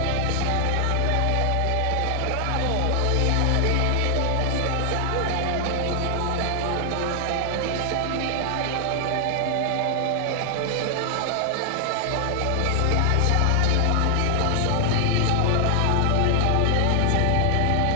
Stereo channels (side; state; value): both; different; correlation 0.00